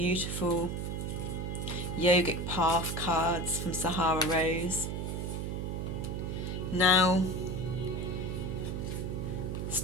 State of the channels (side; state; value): right; noise; hum, 3 dB below the sound